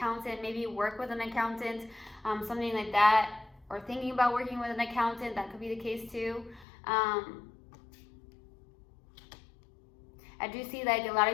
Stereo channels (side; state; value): right; drops out; at 6.7 s